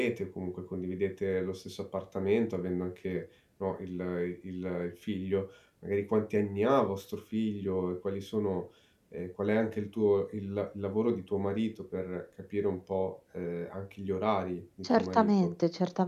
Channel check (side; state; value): both; identical; correlation 1.00